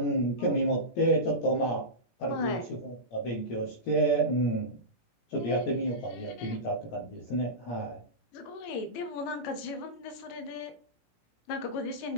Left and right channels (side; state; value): right; late; 18 ms